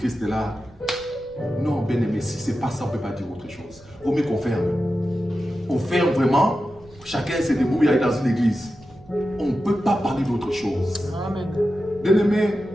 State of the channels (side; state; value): right; noise; rumble, 25 dB below the sound